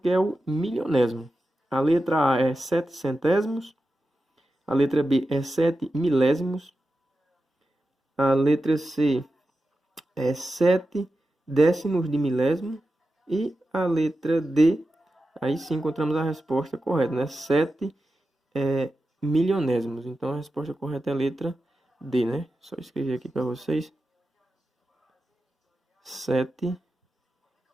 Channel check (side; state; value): both; normal; correlation 0.92